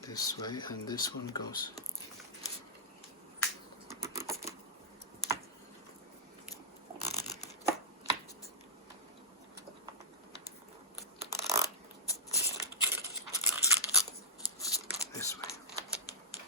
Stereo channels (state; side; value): normal; both; correlation -0.14